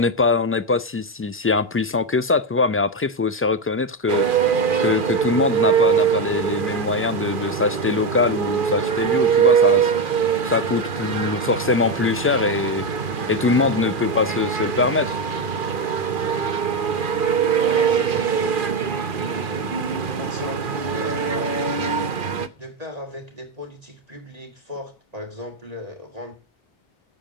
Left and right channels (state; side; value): normal; both; correlation 0.09